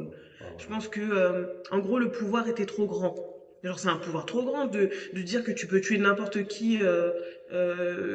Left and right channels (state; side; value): identical; both; correlation 1.00